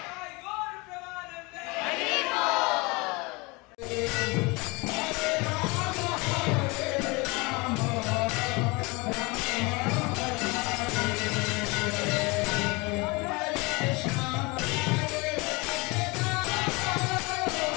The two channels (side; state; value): right; quieter; 26.2 dB